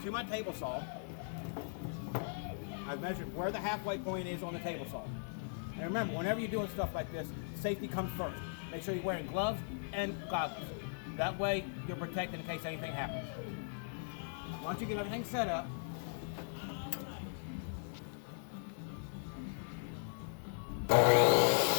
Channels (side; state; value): right; silent; digital silence